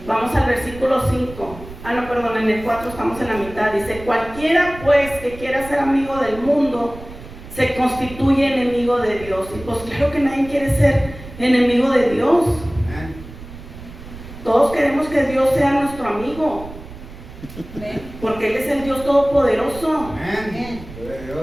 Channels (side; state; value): right; noise; rumble, 15 dB below the sound